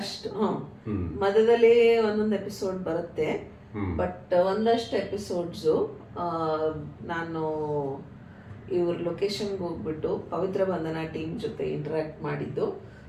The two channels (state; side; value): identical; both; correlation 1.00